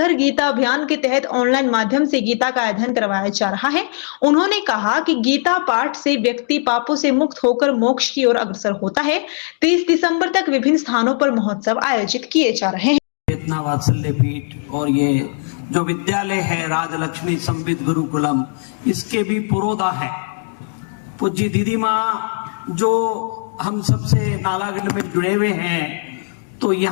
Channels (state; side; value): silent; right; 57 dB below the other